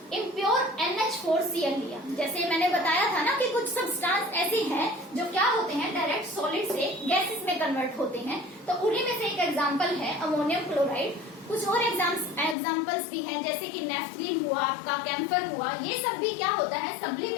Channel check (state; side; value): drops out; right; at 12.6 s